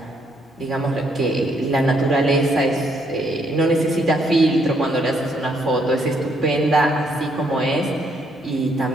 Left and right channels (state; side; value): normal; both; correlation 0.72